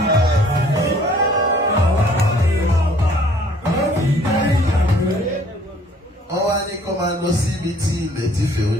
Wọ́n wá ní kó máa lọ sí ibi tí ilẹ̀ ti fẹ̀, ó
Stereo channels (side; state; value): both; normal; correlation 0.57